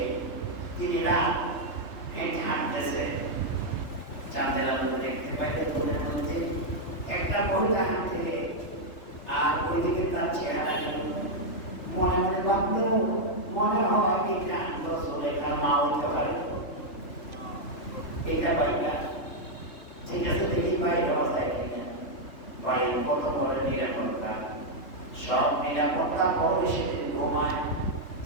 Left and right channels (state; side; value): late; right; 3.4 ms